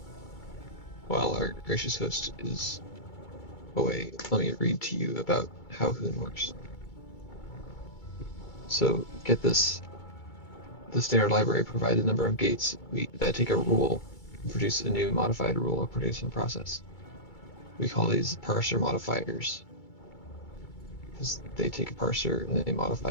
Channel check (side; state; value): right; late; 2.3 ms